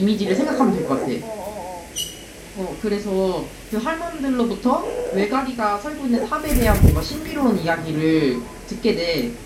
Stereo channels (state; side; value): identical; both; correlation 1.00